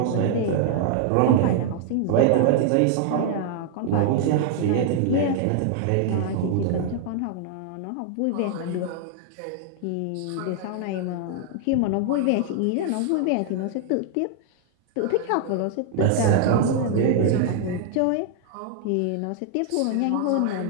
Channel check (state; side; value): different; both; correlation 0.00